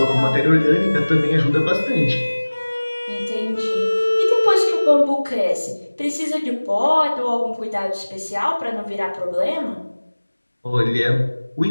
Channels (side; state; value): both; inverted; correlation -1.00